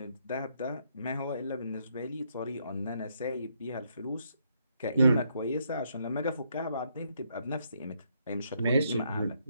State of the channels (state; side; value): inverted; both; correlation -0.74